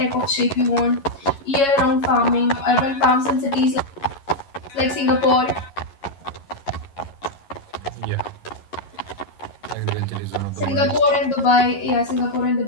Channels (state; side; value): late; right; 11 ms